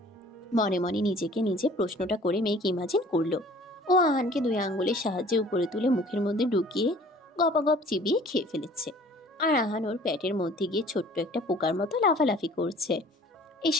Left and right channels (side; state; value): both; normal; correlation 0.51